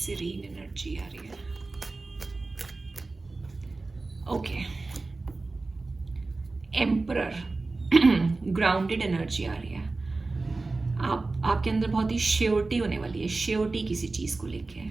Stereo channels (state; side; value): quieter; left; 3.5 dB